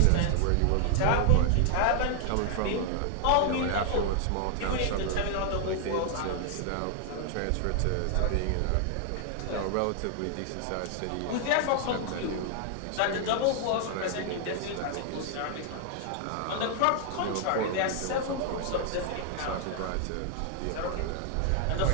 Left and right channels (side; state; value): both; different; correlation 0.00